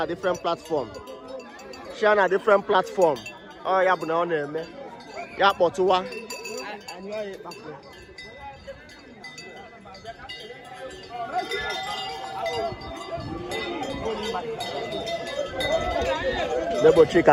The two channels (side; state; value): both; identical; correlation 1.00